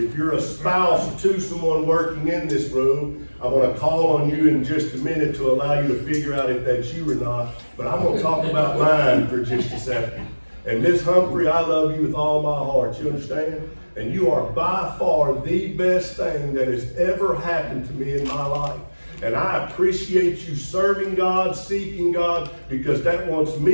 you're a spouse to someone working in this room, I'm going to call on you in just a minute to allow you to figure out if that's you or not. But I'm going to talk about mine for just a second. And Miss Humphrey, I love you with all my heart. You understand? And you are by far the best thing that has ever happened to me in my life. And I appreciate you serving God, seeking God, because that wants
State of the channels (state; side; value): inverted; both; correlation -1.00